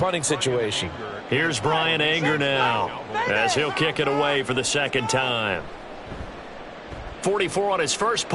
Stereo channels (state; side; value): identical; both; correlation 1.00